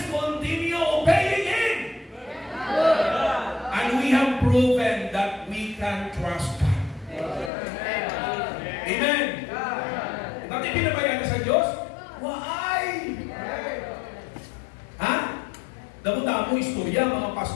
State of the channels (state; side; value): drops out; right; at 7.5 s